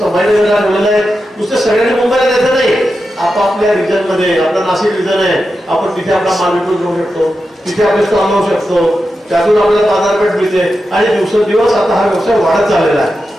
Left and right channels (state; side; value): normal; both; correlation 0.90